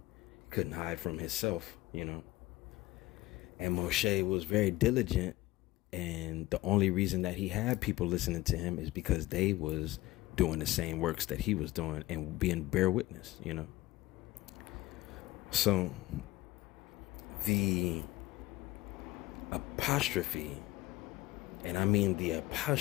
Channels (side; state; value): right; quieter; 18.2 dB